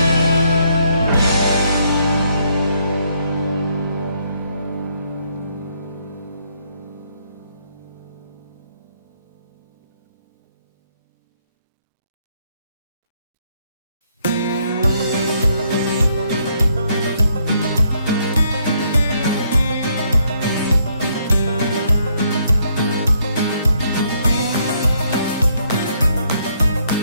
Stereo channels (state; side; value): inverted; both; correlation -0.71